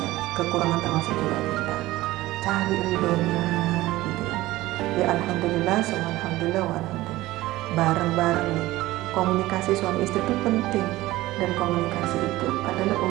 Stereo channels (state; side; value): quieter; left; 17.5 dB